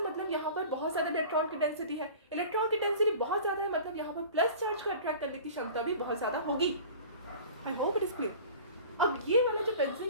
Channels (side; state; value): both; inverted; correlation -0.41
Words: मतलब यहाँ पर बहुत ज़्यादा इलेक्ट्रॉन की डेंसिटी है, इलेक्ट्रॉन की डेंसिटी बहुत ज़्यादा है मतलब यहाँ पर प्लस चार्ज को अट्रैक्ट करने की क्षमता भी बहुत ज़्यादा होगी। आई होप इट इज क्लियर। अब ये वाला जो